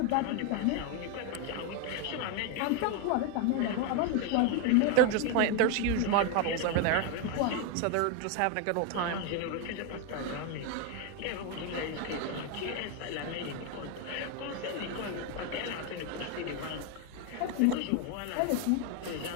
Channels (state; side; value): different; both; correlation 0.01